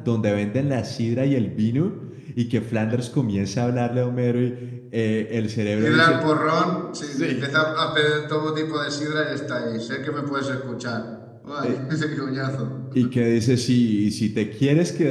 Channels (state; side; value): identical; both; correlation 1.00